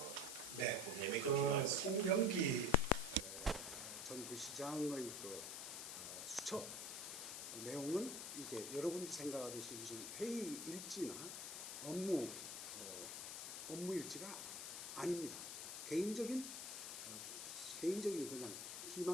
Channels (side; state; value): left; noise; hiss, 6 dB below the sound